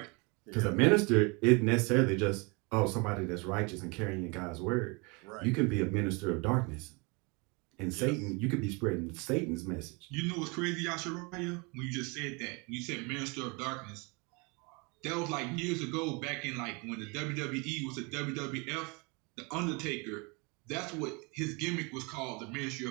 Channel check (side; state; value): left; quieter; 29.7 dB